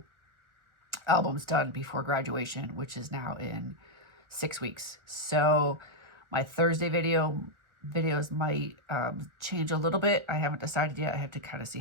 albums done before graduation, which is now in 6 weeks. So my Thursday video videos might change a little bit. I haven't decided yet. I have to kind of see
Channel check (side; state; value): left; late; 1.4 ms